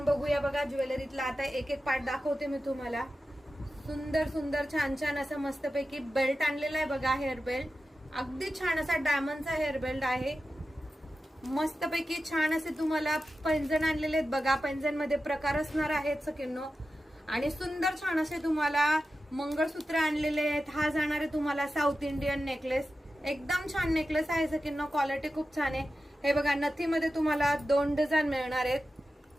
बघूया बघा ज्वेलरीतला आता एक एक पार्ट दाखवते मी तुम्हाला. सुंदर सुंदर छान छान असं मस्तपैकी बेल्ट आणलेला आहे बघा. हेअर बेल्ट अगदी छान असा डायमंडचा हेअर बेल्ट आहे. मस्तपैकी छान असे तुम्हाला पैंजण आणलेले आहेत बघा. पैंजण मध्ये प्रकार असणार आहेत सखींनो. आणि सुंदर छान असे तुम्हाला मंगळसूत्र आणलेले आहेत. हा जाणार आहे तुम्हाला साऊथ इंडियन नेकलेस. एकदम छान नेकलेस आहे सखींनो. क्वालिटी खूप छान आहे. हे बघा नथीमध्ये तुम्हाला 2 डिझाईन मिळणार आहेत.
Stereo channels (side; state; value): both; normal; correlation 0.92